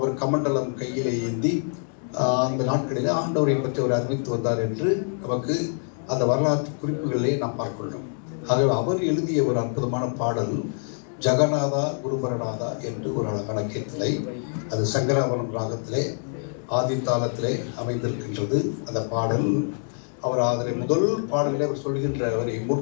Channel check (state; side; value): silent; right; 61 dB below the other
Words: கமண்டலம் கையிலே ஏந்தி அந்த நாட்களிலே ஆண்டவரை பற்றி அவர் அறிவித்து வந்தார் என்று நமக்கு அந்த வரலாற்று குறிப்புகளிலே நாம் பார்க்கிறோம். ஆகவே அவர் எழுதிய ஒரு அற்புதமான பாடல் ஜெகநாதா குருபரநாதா என்று ஒரு அழகான கீர்த்தனை. அது சங்கராபரணம் ராகத்திலே ஆதி தாளத்திலே அமைந்திருக்கின்றது அந்த பாடல். அவர் அதனை முதல் பாடலில் அவர் சொல்கின்ற அவரை